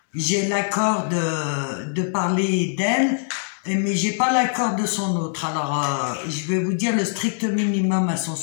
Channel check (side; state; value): right; silent; digital silence